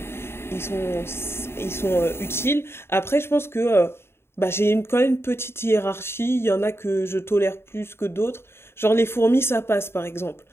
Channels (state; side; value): late; right; 0.12 ms